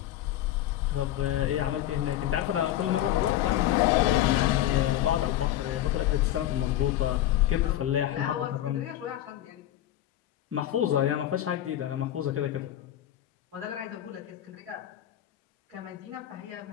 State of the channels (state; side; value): quieter; right; 12.8 dB